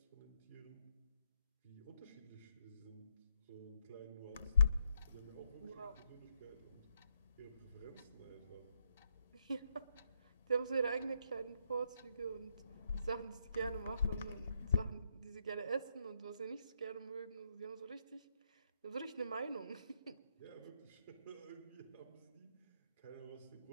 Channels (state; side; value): inverted; both; correlation -0.77